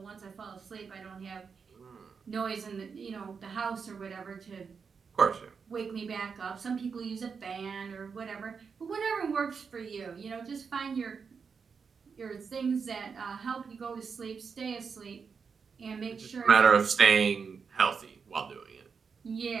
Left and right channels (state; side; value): quieter; left; 5.8 dB